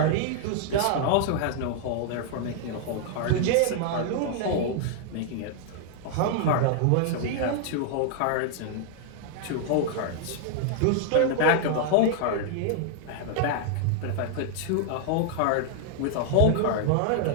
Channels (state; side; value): different; both; correlation 0.00